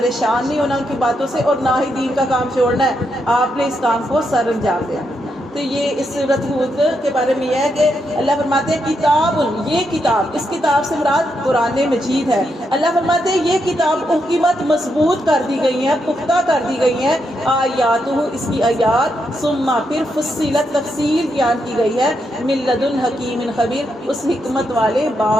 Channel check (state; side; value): normal; both; correlation 0.81